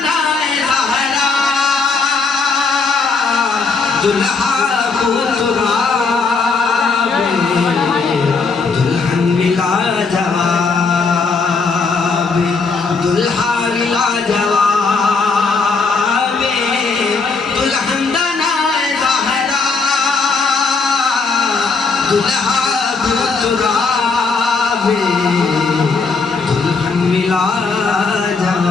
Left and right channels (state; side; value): quieter; right; 4.5 dB